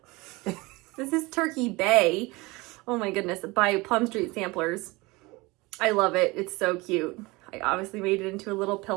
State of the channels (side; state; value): left; quieter; 23.3 dB